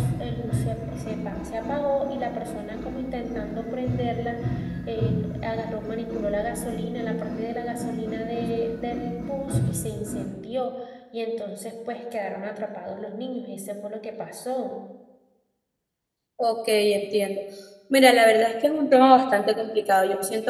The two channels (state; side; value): identical; both; correlation 1.00